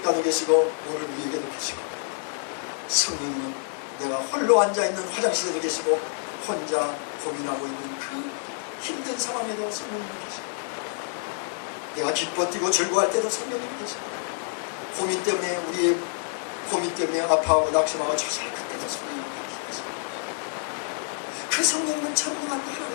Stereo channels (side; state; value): right; silent; 60 dB below the other